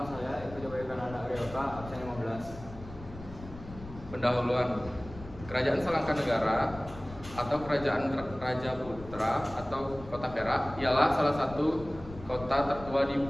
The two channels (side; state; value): left; noise; rumble, 15 dB below the sound